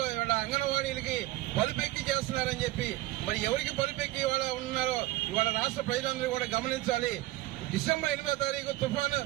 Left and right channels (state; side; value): quieter; left; 17.7 dB